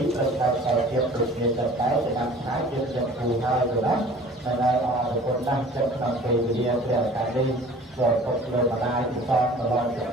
រត្រូវការខ្សែទៀតដូចគ្នាចិត្តតែតាមខែយើងចិត្តគូហើយទៅណាតែដែលអរគុណដាស់ចិត្តក្នុងពេលវេលាព្រះឱកាសនេះក៏ពុកលើម្ដាយពិសោធន៍ដល់ទៅ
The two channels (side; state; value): both; normal; correlation 0.47